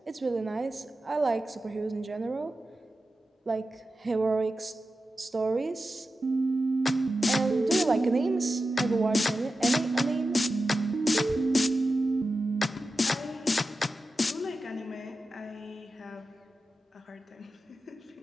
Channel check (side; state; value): both; normal; correlation 0.92